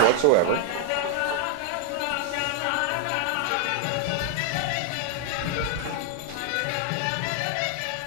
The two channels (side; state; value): both; different; correlation 0.00